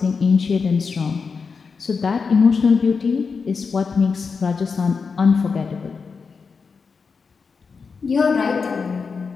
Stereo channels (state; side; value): quieter; right; 5.2 dB